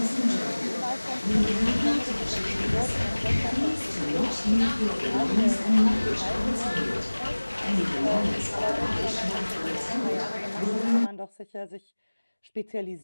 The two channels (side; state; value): both; inverted; correlation -1.00